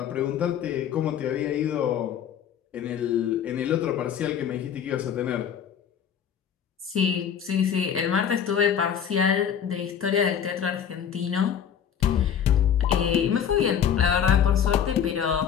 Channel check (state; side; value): quieter; right; 8.5 dB